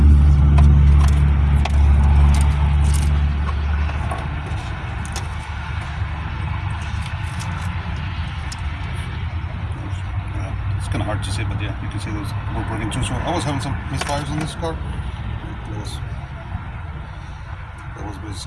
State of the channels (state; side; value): identical; both; correlation 1.00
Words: It's kind of hard to see, but yeah, you can see those were broken too. So I was having some misfires on this car. That was